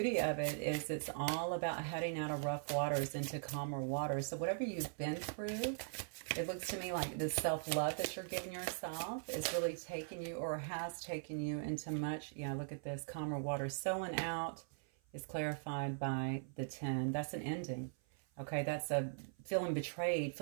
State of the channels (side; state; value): left; silent; 51 dB below the other